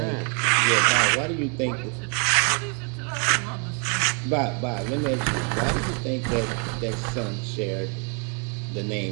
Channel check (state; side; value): quieter; left; 38.4 dB